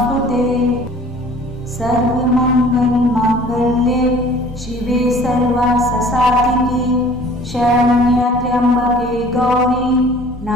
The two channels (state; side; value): normal; both; correlation 0.50